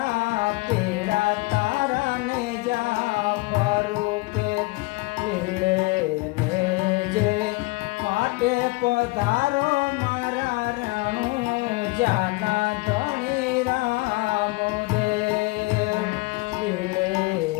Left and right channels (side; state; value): right; quieter; 23.9 dB